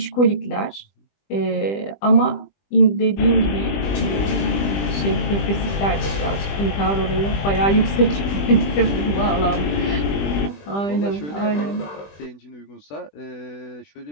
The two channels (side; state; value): right; late; 20 ms